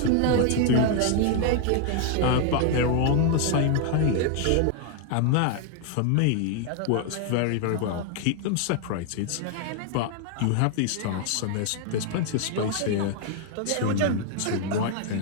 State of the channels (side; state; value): both; different; correlation 0.00